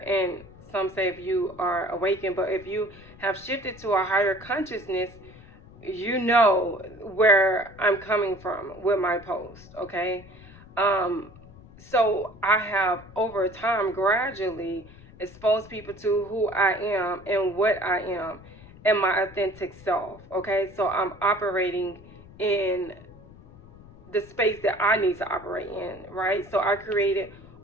and some say if you are awakened, but if you have shifted to a higher consciousness, you know where I'm coming from with my post, okay? So I have over time gradually exposed people to who I am and what I am and my authentic self. Okay, so I'm operating in the space that I need to operate in, right? So I created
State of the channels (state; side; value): noise; left; rumble, 21 dB below the sound